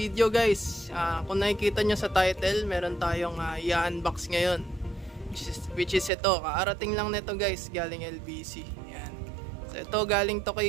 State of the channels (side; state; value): left; drops out; at 6.1 s